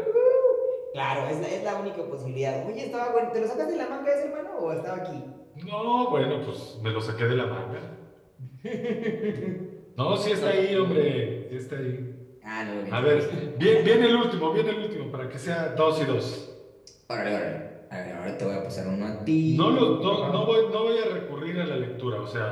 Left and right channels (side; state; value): both; identical; correlation 1.00